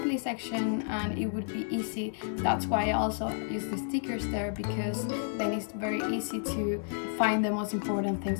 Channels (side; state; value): right; silent; digital silence